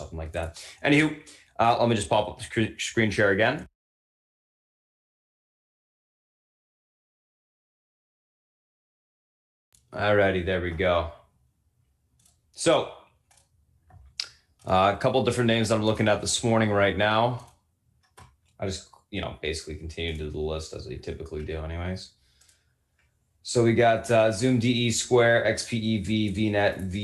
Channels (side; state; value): both; identical; correlation 1.00